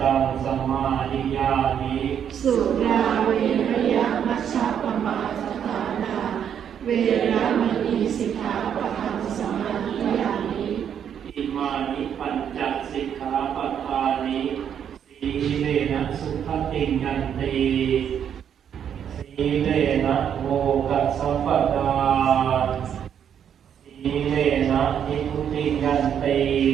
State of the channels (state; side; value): quieter; left; 8.7 dB